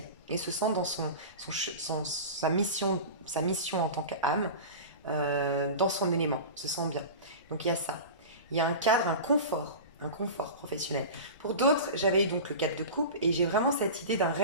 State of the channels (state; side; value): inverted; both; correlation -0.31